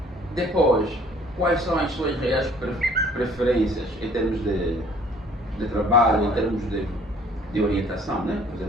Depois, quais são as suas reais preferências em termos de trabalho, em termos de orientação, né? Por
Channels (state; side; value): normal; both; correlation 0.56